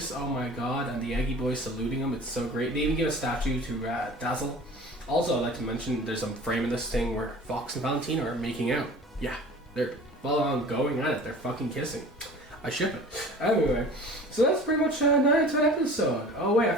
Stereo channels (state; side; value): normal; both; correlation 0.43